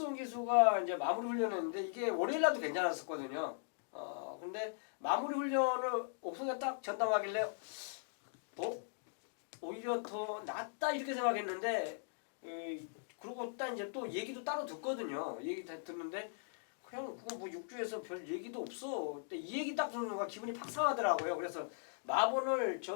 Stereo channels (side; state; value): right; silent; digital silence